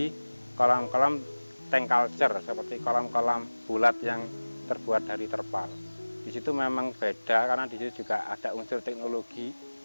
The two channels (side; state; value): both; inverted; correlation -1.00